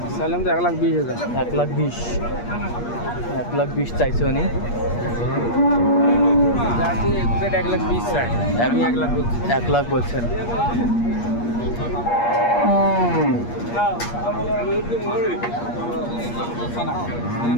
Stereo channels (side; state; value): right; late; 8.5 ms